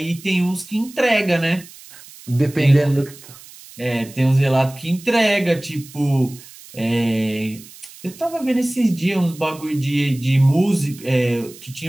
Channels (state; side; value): noise; right; hiss, 20 dB below the sound